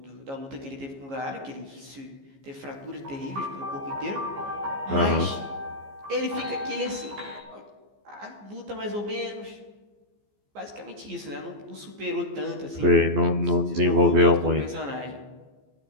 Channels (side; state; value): left; late; 15 ms